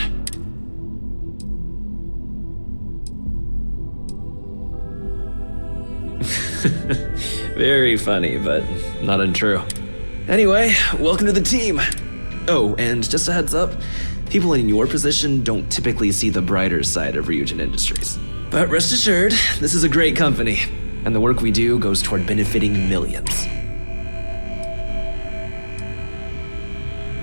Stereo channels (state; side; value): inverted; both; correlation -1.00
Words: Very funny, but not untrue. Anyway, welcome to the team. Oh, and just a heads up, people in your position don't typically see the brighter side of Ryujin Industries. But rest assured, this is a great company, and the work we do goes toward benefiting millions.